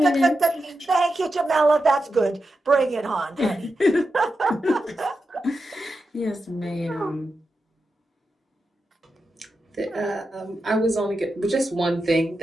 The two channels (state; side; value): normal; both; correlation 0.89